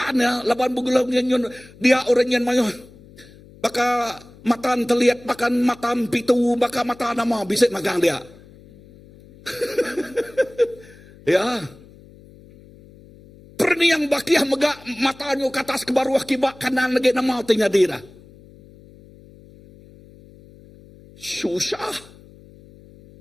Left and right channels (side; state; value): left; noise; hum, 23 dB below the sound